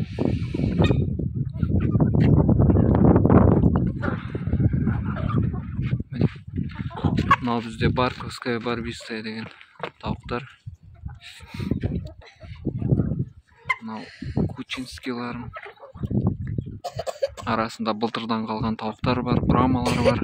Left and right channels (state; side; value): identical; both; correlation 1.00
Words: Мынау бізде Барковская барбистая деген тауықтар. Мынау кучинскийларым. Арасында былтырдан қалған тауықтар бар, брамалар бар.